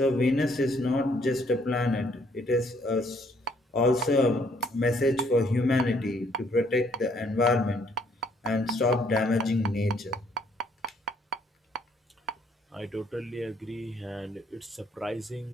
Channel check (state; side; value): normal; both; correlation 0.66